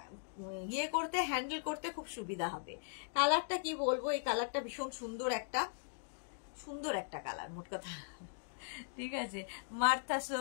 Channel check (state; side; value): silent; right; digital silence